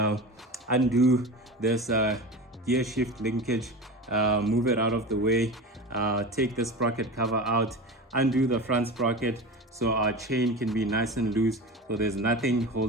undo this gear shift linkage, move it out of the way, take the sprocket cover out, undo the front sprocket so our chain can be nice and loose, so there's nothing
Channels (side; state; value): both; normal; correlation 0.29